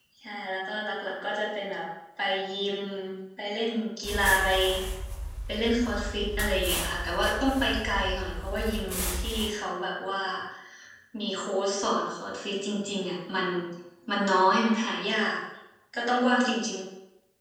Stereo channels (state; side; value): identical; both; correlation 1.00